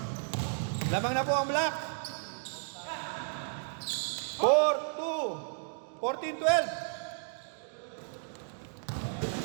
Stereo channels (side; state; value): left; silent; digital silence